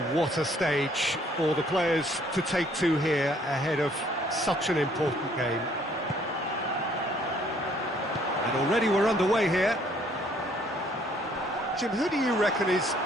what a stage for the players to take to here ahead of such an important game. And already we're underway here. Jim, who do you reckon is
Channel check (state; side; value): normal; both; correlation 0.63